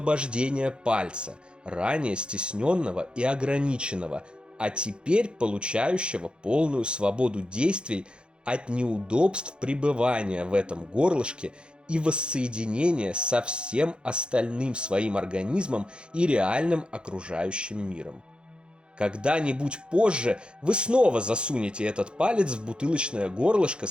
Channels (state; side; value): late; left; 0.053 ms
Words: пальца, ранее стесненного и ограниченного, а теперь получающего полную свободу действий от неудобств пребывания в этом горлышке и воссоединения со всем остальным своим организмом и реальным окружающим миром. Когда-нибудь позже вы снова засунете этот палец в бутылочное горлышко